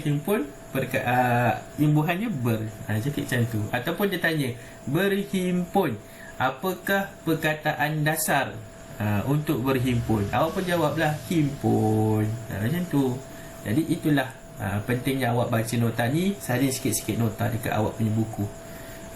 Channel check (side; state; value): both; identical; correlation 1.00